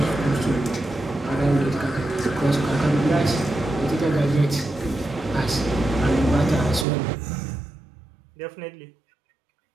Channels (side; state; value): left; drops out; at 6.9 s